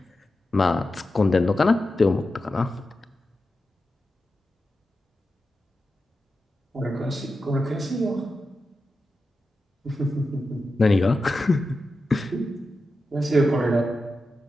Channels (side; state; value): both; normal; correlation 0.91